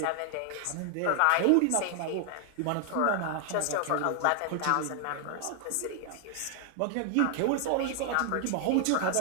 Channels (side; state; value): both; different; correlation 0.00